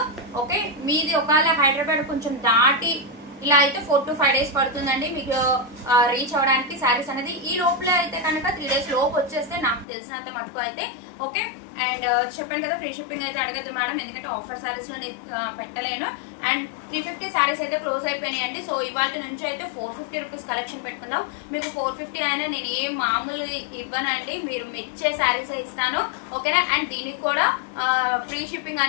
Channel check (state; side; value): drops out; right; at 9.9 s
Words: ఓకే, మీది ఒకవేళ హైదరాబాద్ కొంచెం దాటి ఇలా అయితే 4 to 5 days పడుతుందండి మీకు రీచ్ అవడానికి శారీస్ అనేది. ఈ లోపల అయితే కనుక 3 days లోపు వచ్చేస్తే నాకు తెలిసినంత మటుకు అయితే. ఓకే, అండ్ చెప్పాను కదా ఫ్రీ షిప్పింగ్ అయితే అడగద్దు మేడం, ఎందుకంటే ఆఫర్ శారీస్ లో పెట్టలేను. అండ్ 350 శారీస్ అయితే క్లోజ్ అయిపోయినాయండి. సో ఇవాళ నుంచి అయితే 450 రూపీస్ కలెక్షన్ పెట్టుకుందాం. మీకు 450 అయినా నేను ఏం మామూలు ఇవ్వనండి, మీరు మెచ్చే శారీస్ ఇస్తాను. ఓకేనా? అండ్ దీనికి కూడా ఫ్రీ షిప్పింగ్